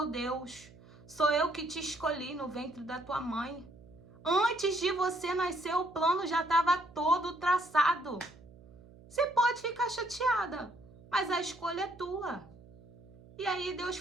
Deus, sou eu que te escolhi no ventre da tua mãe. Antes de você nascer, o plano já estava todo traçado. Você pode ficar chateada, mas a escolha é tua. E aí Deus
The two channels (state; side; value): noise; right; hum, 22 dB below the sound